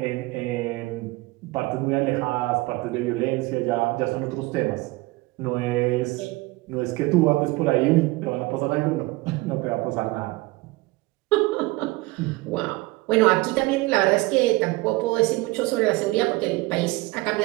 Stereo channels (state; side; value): quieter; left; 21.6 dB